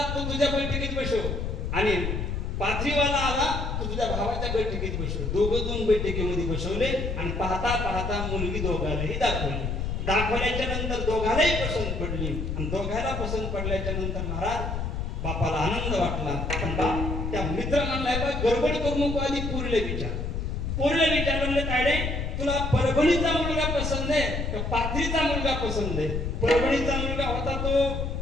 तो तुझ्या बैठकीत बसव, आणि पाथरीवाला आला तो तुझ्या भावाच्या बैठकीत बसव. दोघं 2 बैठकीमध्ये बसवले, आणि पाहता पाहता मुलगी दोघांनाही दाखवली. दाखवल्याच्या नंतर दोघांनाही पसंत पडली, आणि दोघांना पसंत पडल्याच्या नंतर महाराज बापाला आनंद वाटला. पण बाप त्या मित्र म्हणलाय, बा गडबड करू नको, आधी पोरीला विचार म्हणले, तायडे तुला परभणीचा मुलगा पसंत आहे का पाथरीचा मुलगा पसंत आहे? परभणीचा मुलगा होता तो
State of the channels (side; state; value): left; noise; rumble, 2 dB below the sound